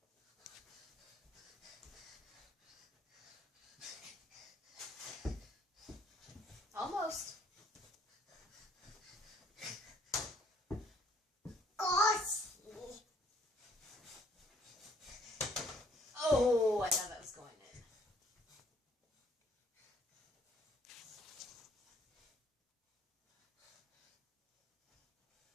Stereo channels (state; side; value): normal; both; correlation 0.63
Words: Almost. Gosh. Oh, I thought that was going in.